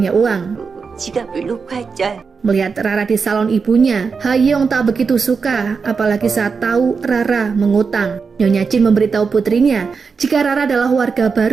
uang. 지갑을 놓고 했죠. Melihat Rara di salon ibunya, Hayoung tak begitu suka, apalagi saat tahu Rara mengutang. Nyonya Jin memberitahu putrinya jika Rara adalah warga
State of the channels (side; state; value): left; quieter; 5.3 dB